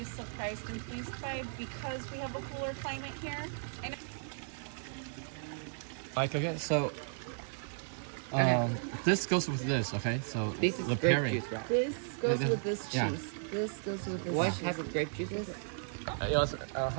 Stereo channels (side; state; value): left; silent; digital silence